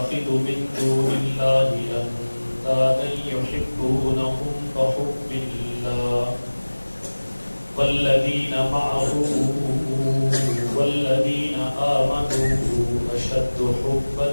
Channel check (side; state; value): both; inverted; correlation -1.00